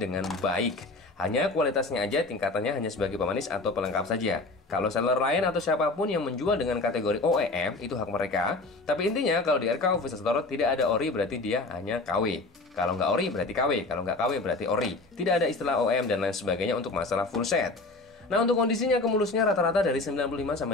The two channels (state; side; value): quieter; right; 3.2 dB